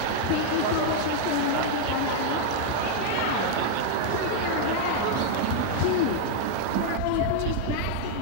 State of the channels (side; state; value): both; different; correlation 0.00